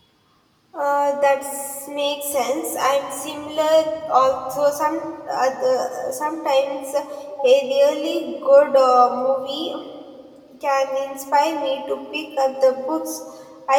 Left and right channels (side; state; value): both; identical; correlation 1.00